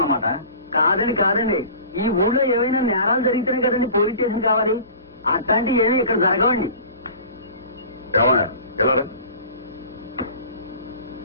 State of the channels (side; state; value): both; inverted; correlation -0.41